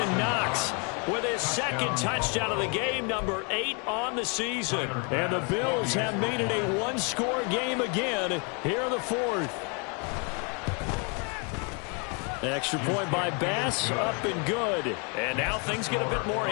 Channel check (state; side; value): quieter; right; 35.3 dB